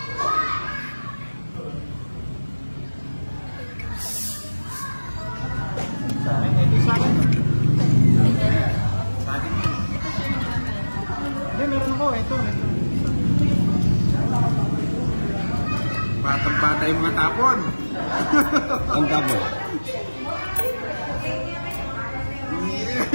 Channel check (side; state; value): both; inverted; correlation -1.00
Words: Sa akin, ito sa akin. Sa akin yun. Hindi, meron ako. Ito. Batang-bata yung mga tapon. Ang tapon.